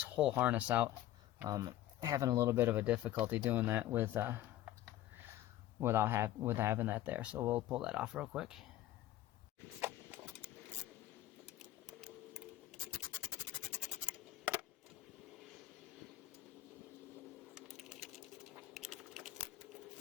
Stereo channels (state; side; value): quieter; right; 13.6 dB